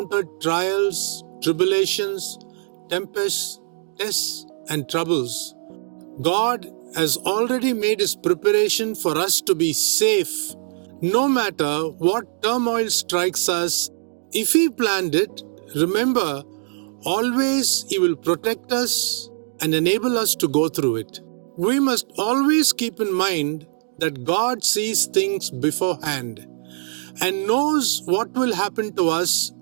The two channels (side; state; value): left; silent; digital silence